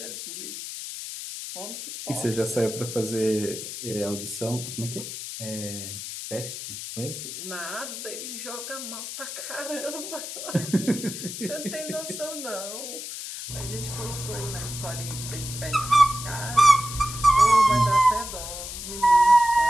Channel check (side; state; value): left; noise; hiss, 8 dB below the sound